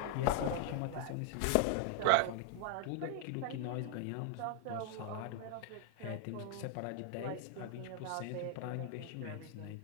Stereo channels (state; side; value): different; both; correlation 0.00